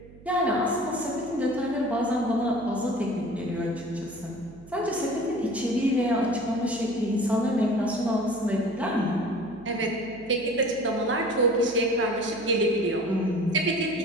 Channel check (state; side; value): noise; right; hum, 21 dB below the sound